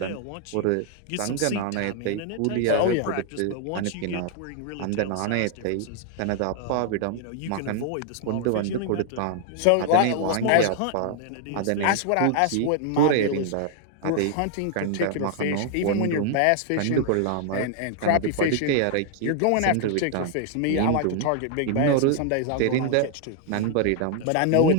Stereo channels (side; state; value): both; different; correlation 0.00